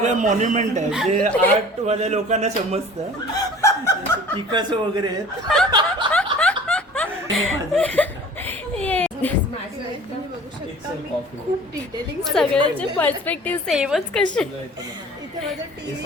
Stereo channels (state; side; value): normal; both; correlation 0.45